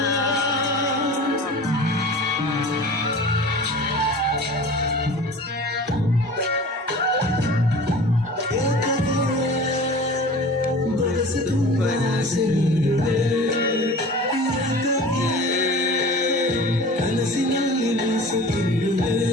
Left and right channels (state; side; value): normal; both; correlation 0.39